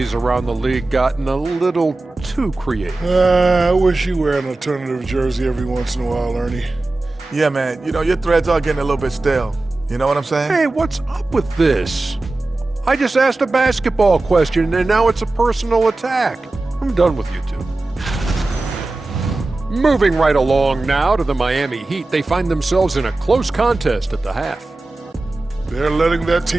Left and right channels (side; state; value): left; quieter; 3.0 dB